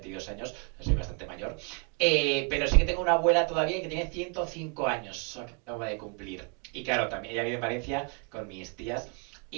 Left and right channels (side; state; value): left; quieter; 34.1 dB